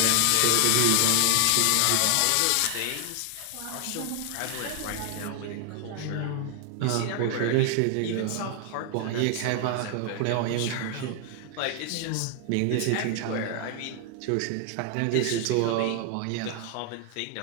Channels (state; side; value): different; both; correlation 0.00